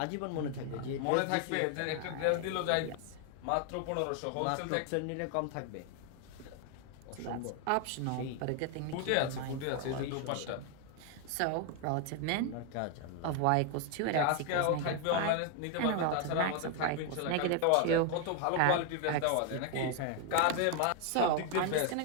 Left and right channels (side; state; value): both; different; correlation 0.00